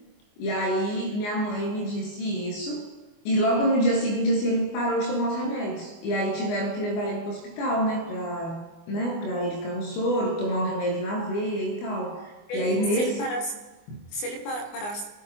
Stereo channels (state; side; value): late; right; 24 ms